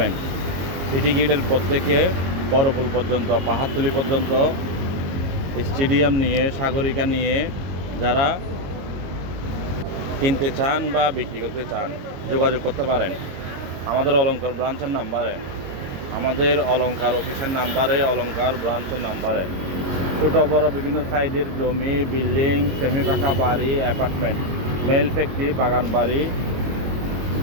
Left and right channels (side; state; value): left; late; 22 ms